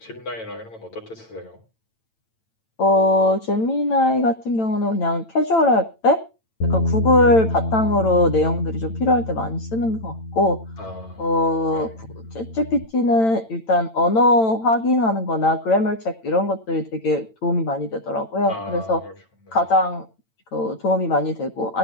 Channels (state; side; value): late; right; 8.9 ms